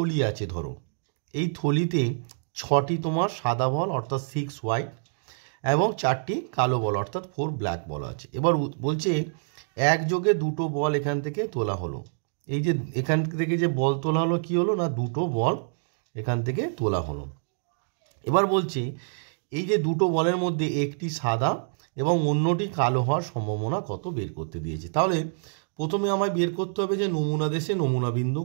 আছে, ধরো এই থলিতে 6টি তোমার সাদা বল অর্থাৎ 6 হোয়াইট এবং 4টি কালো বল অর্থাৎ 4 ব্ল্যাক বল আছে। এবার বলছে একযোগে 2টো বল এখান থেকে তোলা হলো। এই যে এখান থেকে যে বল তোলা হলো, কি হলো না, 2টো বল এখান থেকে তোলা হলো। এবার বলছে এই যে 2টো বলের মধ্যে একটি সাদা এবং অন্যটি কালো হওয়ার সম্ভাবনা কত বের করতে দিয়েছে। তাহলে প্রথমে আমায় বের করতে হবে যে নমুনা দেশে নমুনা বিন্দু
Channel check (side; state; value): left; silent; digital silence